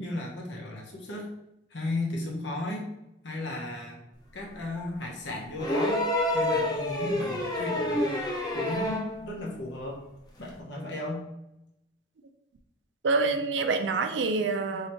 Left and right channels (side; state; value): both; normal; correlation 0.25